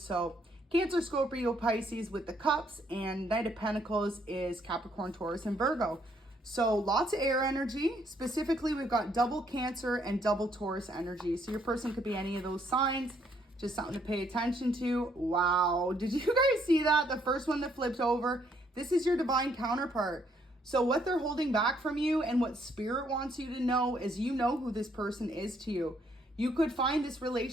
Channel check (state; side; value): normal; both; correlation 0.69